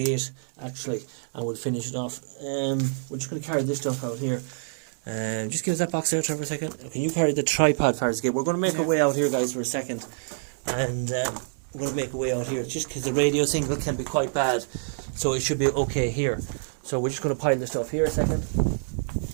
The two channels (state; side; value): silent; left; 60 dB below the other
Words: actually, and we'll finish it off. We're just going to carry this stuff out here. Just give us that box there, Trevor, a second. Can you carry the tripod towards the gate? We're going to make our way out here, guys, for a second. And we're going to make a way out here, just because the radio signal can be quite bad. So it should be okay here. So we're just going to pile the stuff here a second.